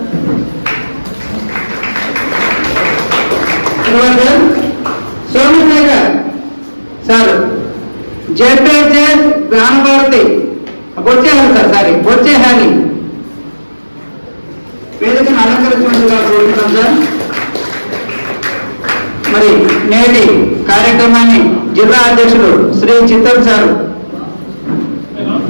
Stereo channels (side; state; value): both; inverted; correlation -1.00